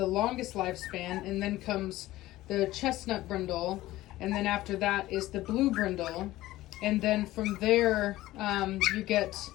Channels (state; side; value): quieter; right; 16.5 dB